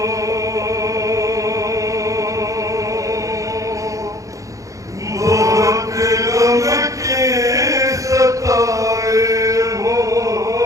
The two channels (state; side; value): late; left; 0.16 ms